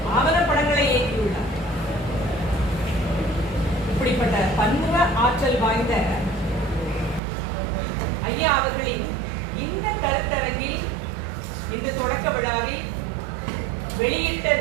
ஆவணப்படங்களை இயக்கியுள்ளார். இப்படிப்பட்ட பன்முக ஆற்றல் வாய்ந்த ஐயா அவர்களின் இந்த கருத்தரங்கில் இந்த தொடக்க விழாவில் வெளியிட்ட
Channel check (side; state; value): left; drops out; at 7.2 s